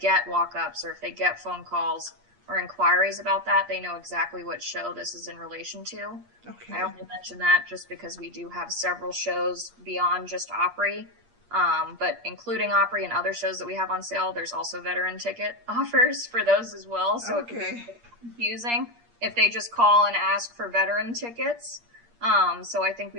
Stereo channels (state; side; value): late; left; 8.5 ms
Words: walk-ups or if they get phone calls or inquiries about that, they know exactly what show this is in relation to. Okay. I only mention that just because we do have several shows beyond just Opry, but including Opry and other shows that we have on sale, there's also veteran ticket offers for those as well. So it could be confusing if they just call and ask for veteran tickets. So I think